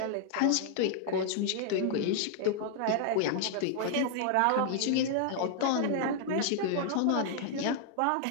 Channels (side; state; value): both; different; correlation -0.01